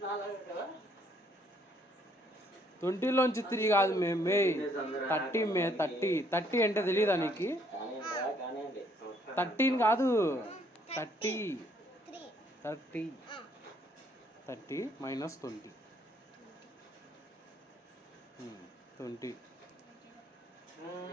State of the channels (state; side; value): normal; both; correlation 0.67